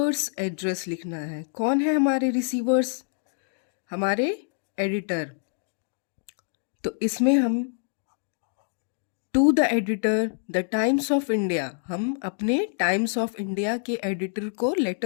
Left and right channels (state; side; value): silent; right; digital silence